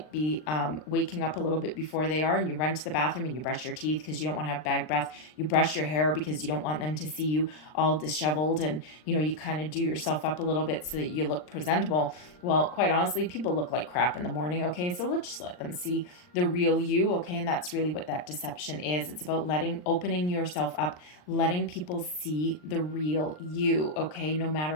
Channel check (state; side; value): late; right; 39 ms